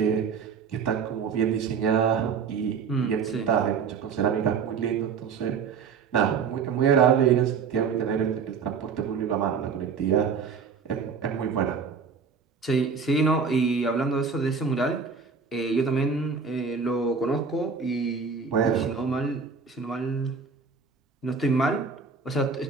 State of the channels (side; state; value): left; quieter; 5.7 dB